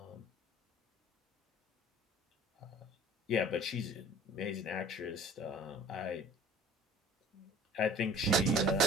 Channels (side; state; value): both; normal; correlation 0.47